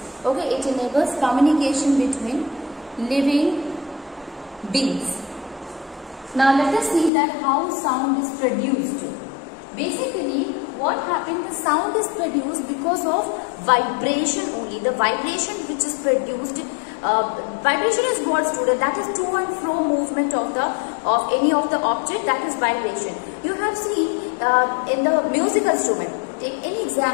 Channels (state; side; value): drops out; right; at 7.1 s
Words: Okay, it enables communication between living beings. Now let us see that how sound is produced. Basically, what happened? The sound is produced because of vibration only. The vibration which is produced. Vibration is what, student? That is to and fro movement of any of the object. That is vibration. You have seen in the musical instrument. Take any